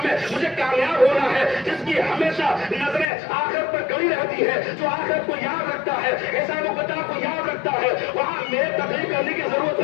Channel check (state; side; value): drops out; right; at 3.1 s